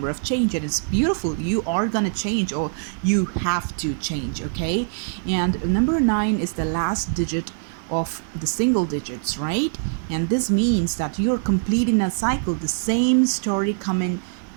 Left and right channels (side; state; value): left; silent; 57 dB below the other